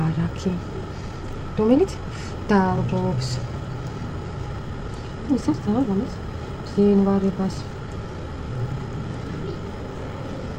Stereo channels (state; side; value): identical; both; correlation 1.00